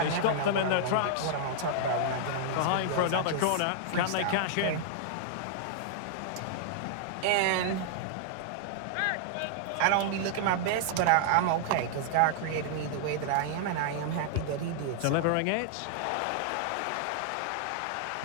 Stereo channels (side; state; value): both; different; correlation -0.01